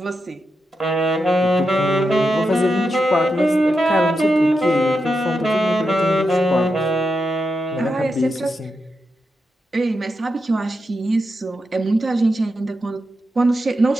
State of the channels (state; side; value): normal; both; correlation 0.87